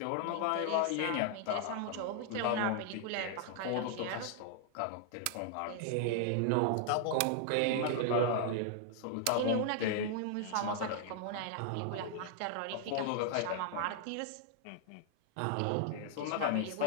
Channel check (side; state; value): both; different; correlation 0.00